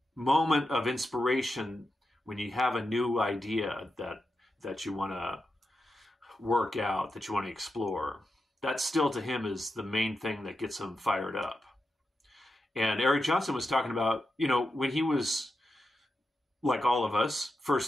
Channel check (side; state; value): both; normal; correlation 0.88